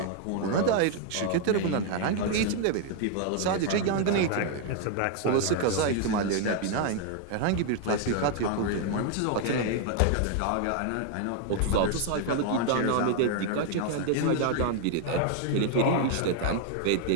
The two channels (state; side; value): different; both; correlation 0.00